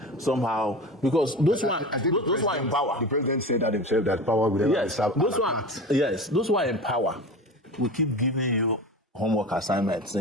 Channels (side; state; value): both; normal; correlation 0.31